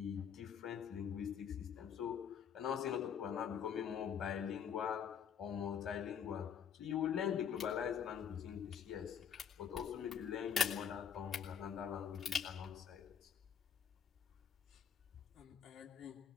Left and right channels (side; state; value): right; quieter; 7.9 dB